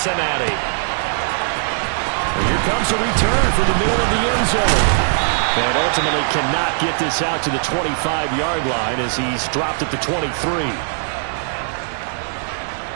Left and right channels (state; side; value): silent; left; digital silence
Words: And here comes a return from the middle of the end zone. And ultimately cannot get this out to the 25-yard line as he's dropped at the 23.